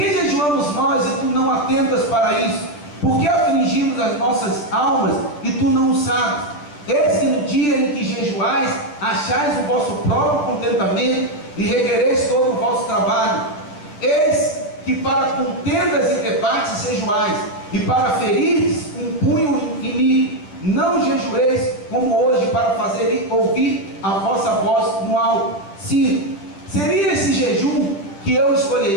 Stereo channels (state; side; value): late; right; 10 ms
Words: jejuamos nós e tu não atentas para isso? Por que afligimos as nossas almas e tu não o sabes? Eis que no dia em que jejuais, achais o vosso próprio contentamento e requereis todo o vosso trabalho. Eis que para contendas e debates jejuais, e para ferir um punho inimigo. Não jejueis como hoje, para fazer ouvir a vossa voz no alto. Sim, seria esse jejum que eu